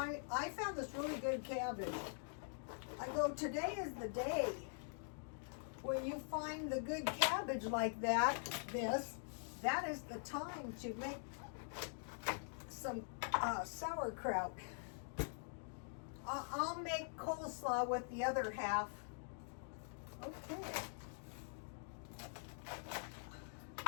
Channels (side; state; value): right; silent; digital silence